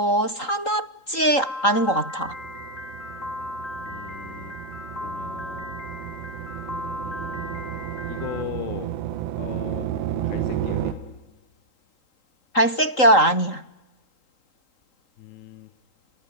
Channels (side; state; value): right; late; 3.8 ms